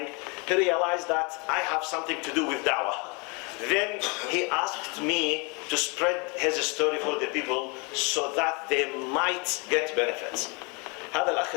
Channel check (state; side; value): quieter; right; 31.0 dB